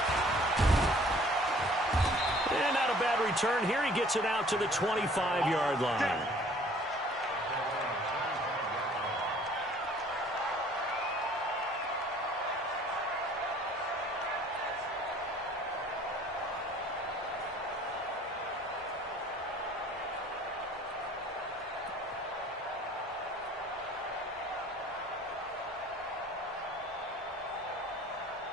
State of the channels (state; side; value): normal; both; correlation 0.53